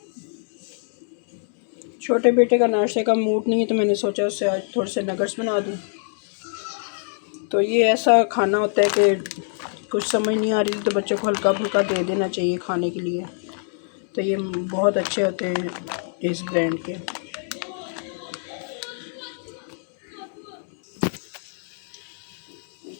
छोटे बेटे का नाश्ते का मूड नहीं है तो मैंने सोचा उससे आज थोड़े से नगर्स बना दूँ। तो ये ऐसा खाना होता है कि कुछ समझ नहीं आ रही तो बच्चों को हल्का फुल्का दे देना चाहिए खाने के लिए। तो ये बहुत अच्छे होते हैं इस ब्रांड के।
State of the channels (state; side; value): silent; right; digital silence